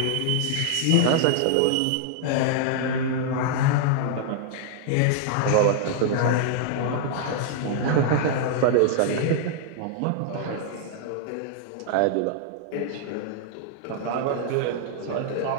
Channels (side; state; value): both; different; correlation -0.01